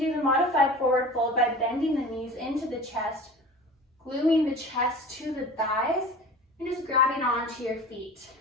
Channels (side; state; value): both; normal; correlation 0.38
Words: the modified forward fold by bending the knees into the chest, gluing the chest to the thighs, and just grabbing onto your feet.